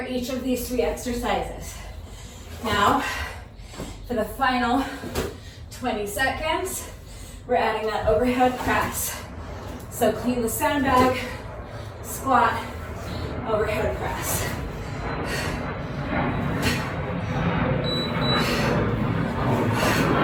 each of these 3 exercises. Now, for the final 20 seconds, we're adding that overhead press. So clean the sandbag, squat, overhead press.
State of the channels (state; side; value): identical; both; correlation 1.00